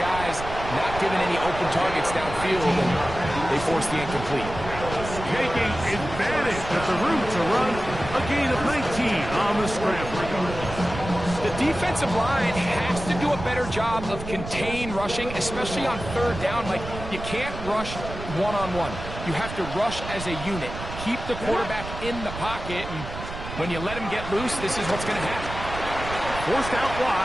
not giving any open targets downfield, and they force the incomplete. Taking advantage of the room to run, a gain of 19 on the scramble. The defensive line has to do a better job of contain rushing, especially on 3rd down. Like, you can't rush one-on-one. You have to rush as a unit. Keep the quarterback in the pocket, and when you let him get loose, this is what's going to happen. Forced out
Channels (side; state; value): right; noise; rumble, 9 dB below the sound